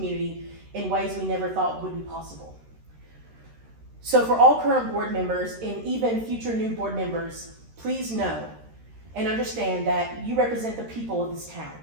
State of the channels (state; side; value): late; left; 13 ms